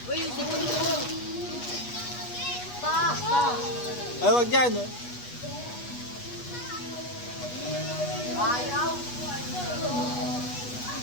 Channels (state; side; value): late; right; 8.3 ms